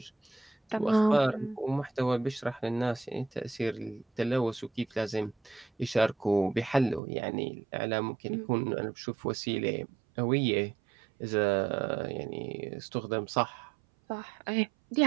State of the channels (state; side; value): drops out; left; at 7.0 s